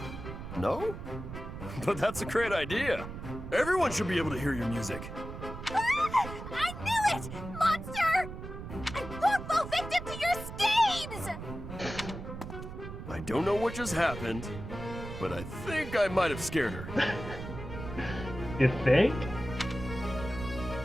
No? But that's a great idea. Everyone should be able to hear your music. I knew it! Monster! I won't fall victim to your schemes! I don't know what just happened, but I think I might have scared her. You think?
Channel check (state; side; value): noise; right; rumble, 9 dB below the sound